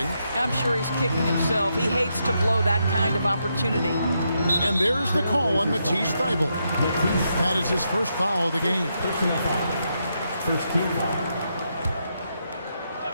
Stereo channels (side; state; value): both; inverted; correlation -0.81